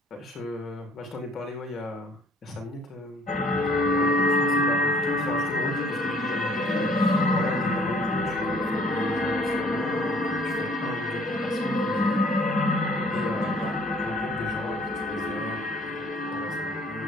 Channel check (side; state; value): both; normal; correlation 0.57